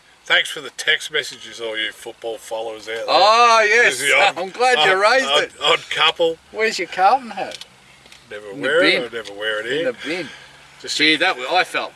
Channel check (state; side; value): identical; both; correlation 1.00